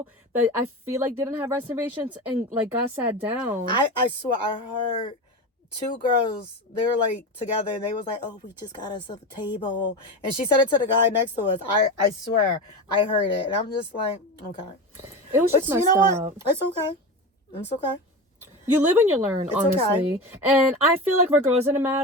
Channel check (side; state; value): both; normal; correlation 0.23